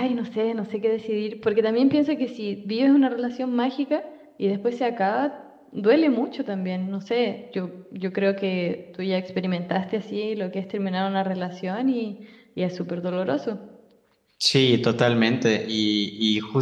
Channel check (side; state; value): both; identical; correlation 1.00